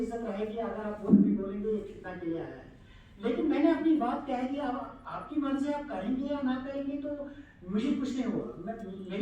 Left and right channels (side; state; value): both; identical; correlation 1.00